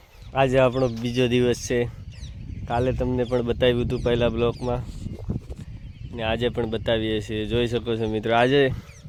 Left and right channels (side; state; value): both; identical; correlation 1.00